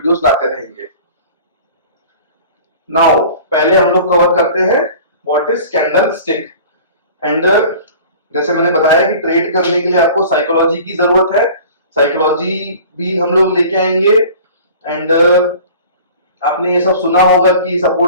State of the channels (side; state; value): both; inverted; correlation -0.44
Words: लाते रहेंगे। नाउ पहले हम लोग कवर करते हैं what is candle stick. And जैसे मैंने बताया कि ट्रेड करने के लिए आपको साइकोलॉजी की जरूरत है, साइकोलॉजी भी हम लोग लेके आएंगे। एंड आपने ये सब सुना होगा कि